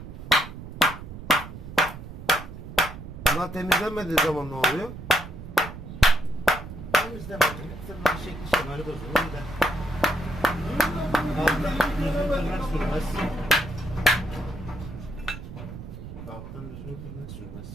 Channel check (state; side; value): noise; right; rumble, 11 dB below the sound